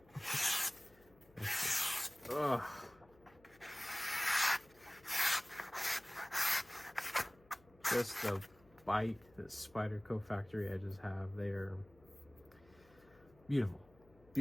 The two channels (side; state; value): left; noise; hum, 28 dB below the sound